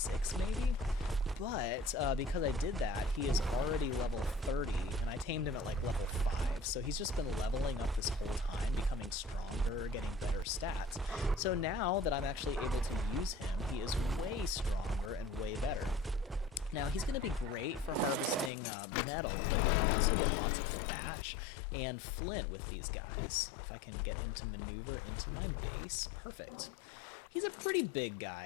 maybe? But because I did that, he is already level 30, and I tamed him at like level 5, so he's just been leveling up this whole time, becoming stronger, getting better stats. So now that I'm actually able to use him, he is way stronger and way better. Now, he's going to be great for harvesting metal, but you can also get lots of thatch and flint with these guys. If I can get him to maneuver into my base, perfect. He's a pretty big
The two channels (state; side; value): drops out; right; at 18.5 s